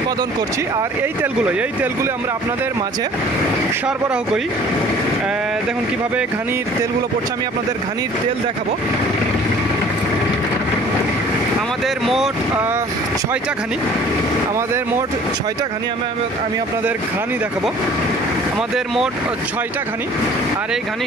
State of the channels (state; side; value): normal; both; correlation 0.51